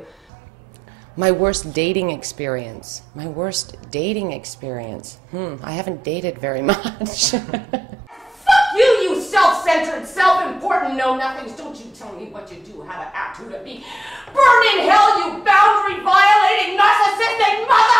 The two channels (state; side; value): normal; both; correlation 0.88